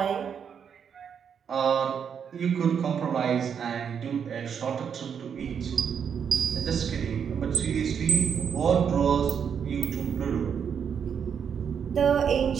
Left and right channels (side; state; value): left; quieter; 7.4 dB